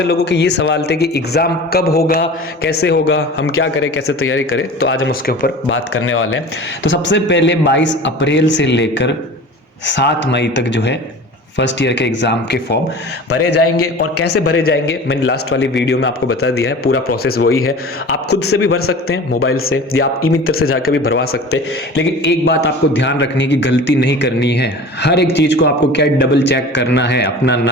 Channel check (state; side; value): normal; both; correlation 0.38